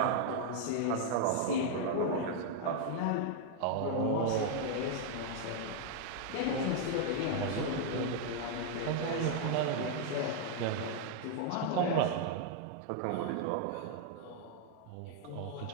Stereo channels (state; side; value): different; both; correlation 0.00